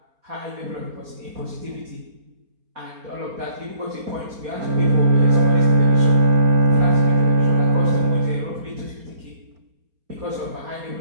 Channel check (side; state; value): left; late; 4.2 ms